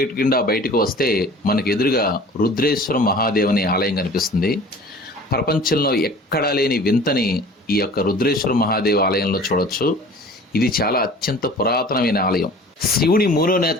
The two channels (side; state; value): both; normal; correlation 0.44